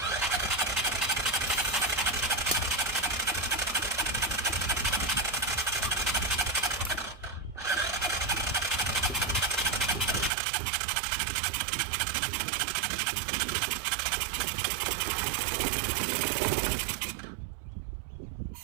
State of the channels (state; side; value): drops out; left; at 10.3 s